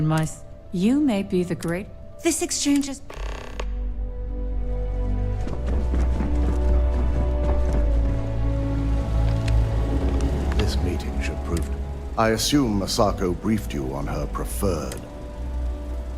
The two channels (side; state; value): both; identical; correlation 1.00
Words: my... You may be the great... This exchange is... This meeting should prove... I assume Masako briefed you on her preferred.